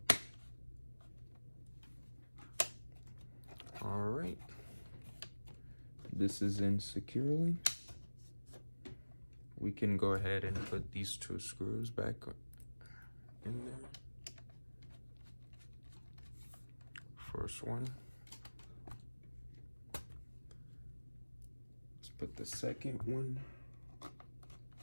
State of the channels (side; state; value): both; inverted; correlation -1.00